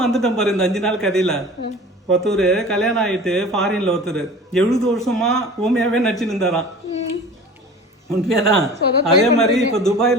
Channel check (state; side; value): normal; both; correlation 0.40